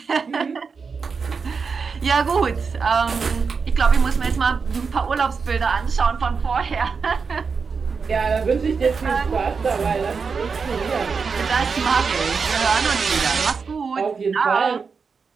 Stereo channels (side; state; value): left; quieter; 5.3 dB